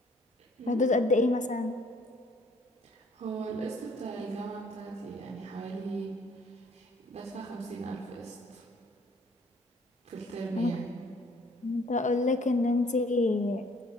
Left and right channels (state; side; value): normal; both; correlation 0.59